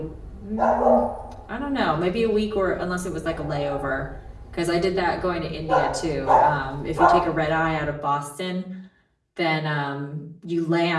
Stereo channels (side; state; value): both; identical; correlation 1.00